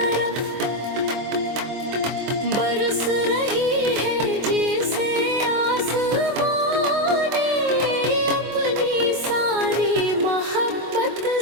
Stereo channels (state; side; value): late; left; 24 ms